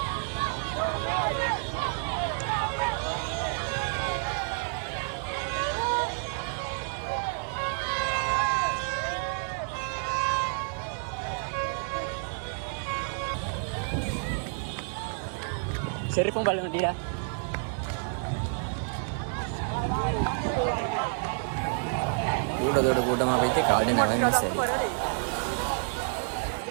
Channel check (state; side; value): silent; left; 58 dB below the other